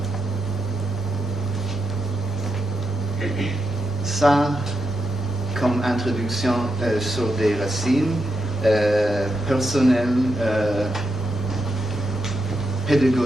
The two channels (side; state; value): both; normal; correlation 0.84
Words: Ça, comme introduction sur des racines personnelles,